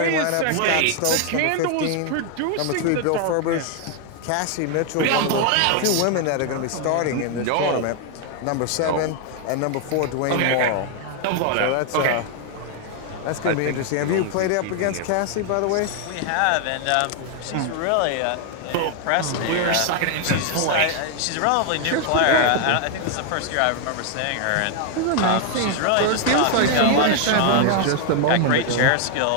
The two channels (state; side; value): different; both; correlation 0.00